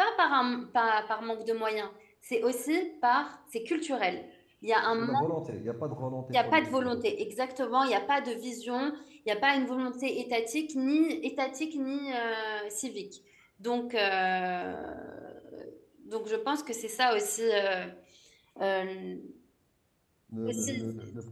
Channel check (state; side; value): identical; both; correlation 1.00